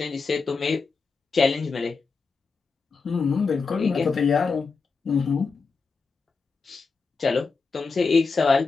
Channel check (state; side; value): quieter; right; 4.6 dB